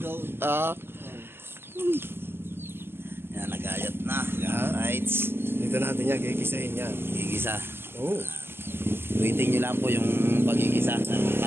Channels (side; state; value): left; late; 0.11 ms